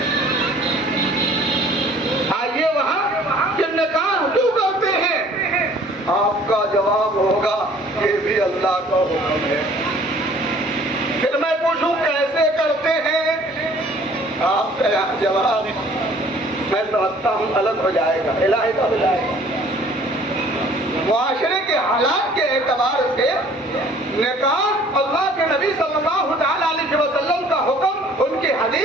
آئیے وہاں کہ نکاح کیوں کرتے ہیں؟ آپ کا جواب ہوگا یہ بھی اللہ کا حکم ہے۔ پھر میں پوچھوں کیسے کرتے ہیں؟ آپ کا جواب میں سمجھتا ہوں الگ ہو جائے گا، علیحدہ ہو جائے گا۔ معاشرے کے حالات کے اعتبار سے نکاح اللہ کے نبی صلی اللہ تعالی علیہ وسلم کا حکم، ان کی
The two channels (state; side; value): normal; both; correlation 0.54